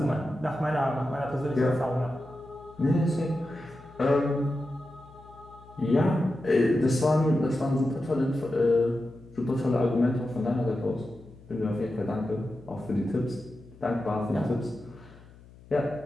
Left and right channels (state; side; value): noise; left; hum, 22 dB below the sound